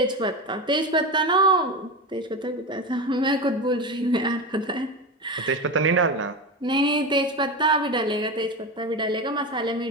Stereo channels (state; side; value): normal; both; correlation 0.21